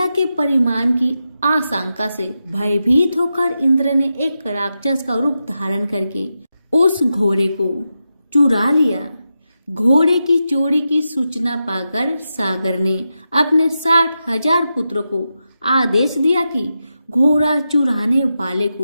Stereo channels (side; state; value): both; inverted; correlation -0.89